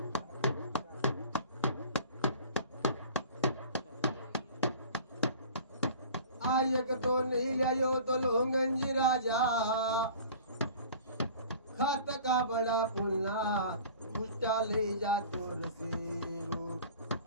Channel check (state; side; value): inverted; both; correlation -0.44